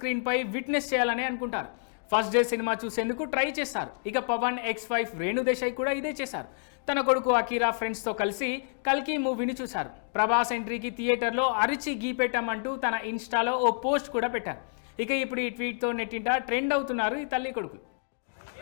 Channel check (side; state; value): right; silent; digital silence